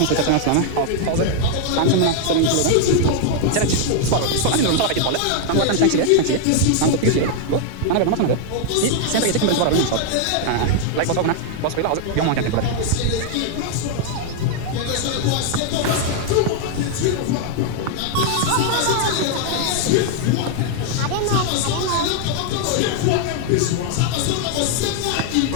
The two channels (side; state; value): both; different; correlation 0.00